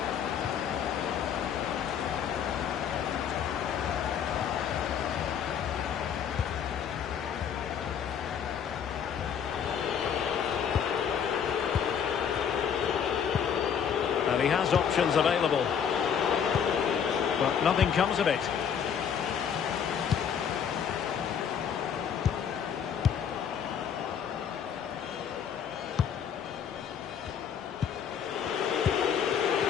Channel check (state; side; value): quieter; right; 7.9 dB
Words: And he has options available. But nothing comes of it.